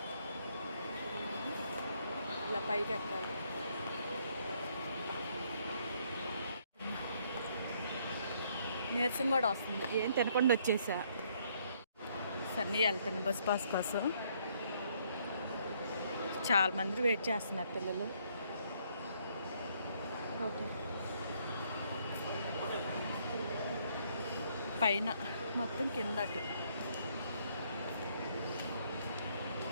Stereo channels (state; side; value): inverted; both; correlation -0.68